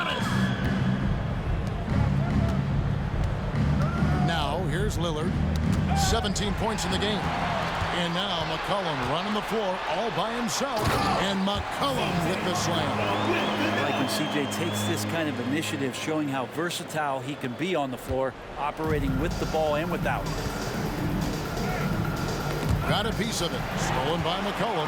Now here's Lillard. 17 points in the game. And now McCollum running the floor all by himself. And McCollum with the slam. I like when CJ takes this kind of initiative, showing how versatile he can be on the floor, operating with the ball and without. Got a piece of it. Stolen by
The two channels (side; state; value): both; identical; correlation 1.00